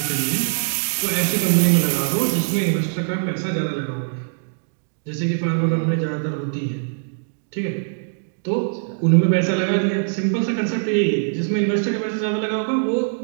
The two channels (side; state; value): left; silent; digital silence